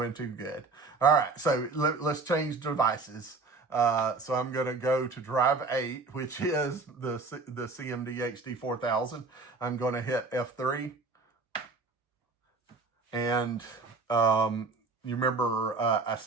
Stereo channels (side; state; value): left; quieter; 3.9 dB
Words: too good. All right, so let's change devices. So I'm going to go to drive 8, which is the CMD HD 4000. I'm going to hit F3. And you remember I